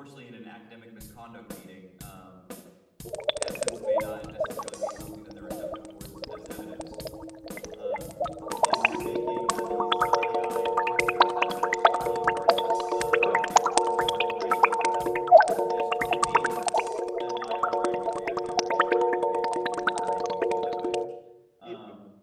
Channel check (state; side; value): identical; both; correlation 1.00